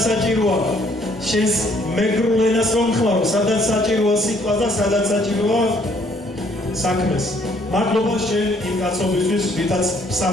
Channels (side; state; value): both; normal; correlation 0.64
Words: საჭიროა, შენს მეგრულ ენას რომ ხმარო, სადაც საჭიროა სიტყვას და სადაც საჭიროა საქმეს. მადლობა შენ იმ კაცობისთვის, ვითაც